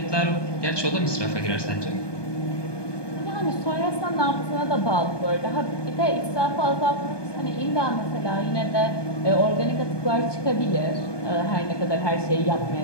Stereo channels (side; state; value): right; late; 1.2 ms